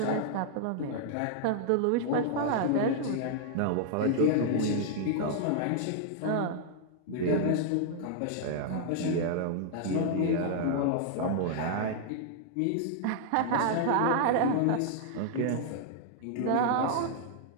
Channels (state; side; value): different; both; correlation -0.01